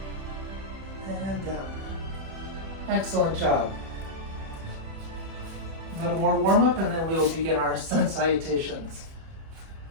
And down. Excellent job. A little more warm up and then we will begin our sun salutations.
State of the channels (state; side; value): late; left; 31 ms